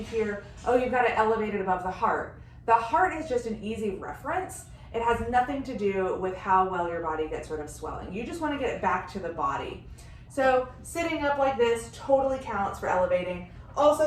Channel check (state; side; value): identical; both; correlation 1.00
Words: hear, oh, you've got to elevate it above the heart. The heart is just an easy reference. It has nothing to do with how well your body gets rid of swelling. You just want to get it back to the body. So sitting up like this totally counts for elevating.